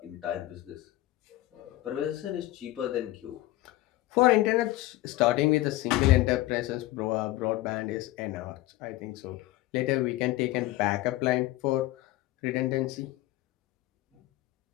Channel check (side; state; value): right; quieter; 16.8 dB